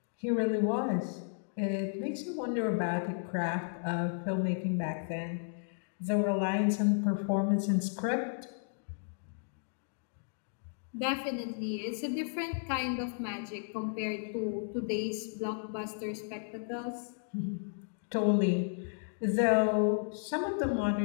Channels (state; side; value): silent; right; digital silence